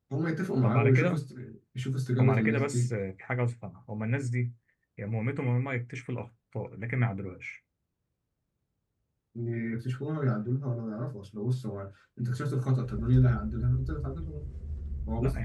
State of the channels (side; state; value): both; identical; correlation 1.00